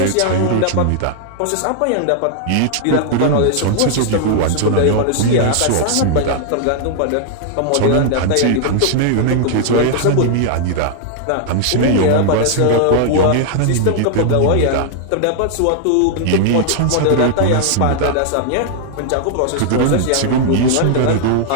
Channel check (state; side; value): different; both; correlation 0.00